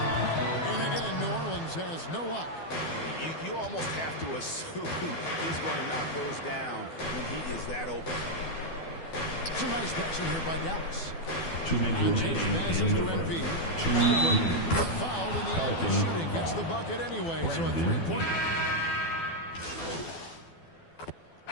again, New Orleans has no luck. You almost have to assume he's going to knock those down when he is that open. Some nice passing here by Dallas. 2 minutes remaining passes in to the MP. first. Fouled in the act of shooting. Gets the bucket anyway, so a 3-point.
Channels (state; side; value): late; right; 12 ms